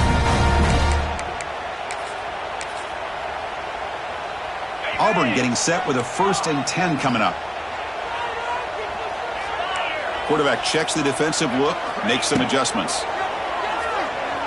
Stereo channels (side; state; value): both; identical; correlation 1.00